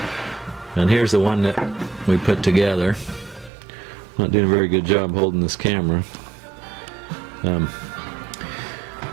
and here's the one that we put together. Not doing a very good job holding this camera.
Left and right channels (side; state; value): left; drops out; at 3.5 s